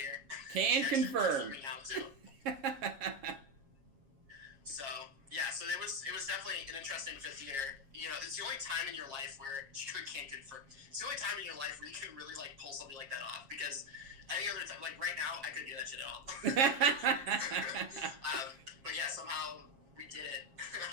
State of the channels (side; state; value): left; late; 7.3 ms